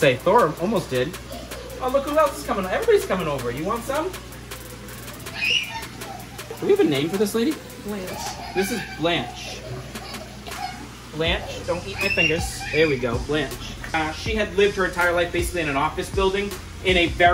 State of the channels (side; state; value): both; identical; correlation 1.00